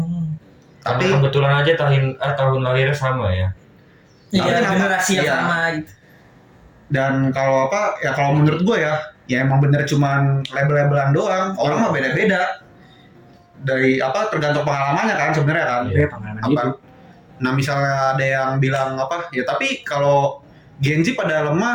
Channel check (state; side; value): identical; both; correlation 1.00